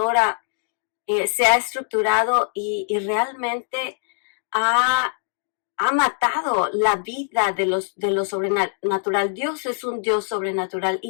se ha estructurado y realmente ha matado la vida de lo sobrenatural. Dios es un Dios sobrenatural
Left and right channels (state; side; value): silent; right; digital silence